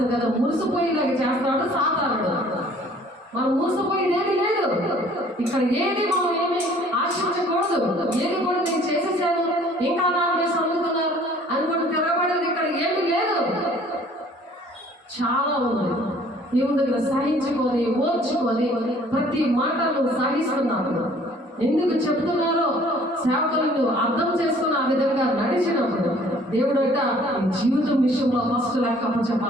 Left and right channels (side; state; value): both; normal; correlation 0.55